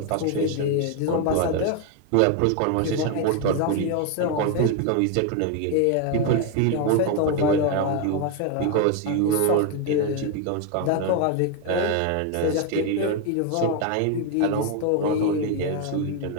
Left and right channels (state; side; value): different; both; correlation 0.01